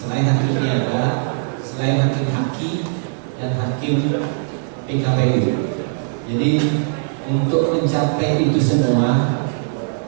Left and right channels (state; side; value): silent; left; 66 dB below the other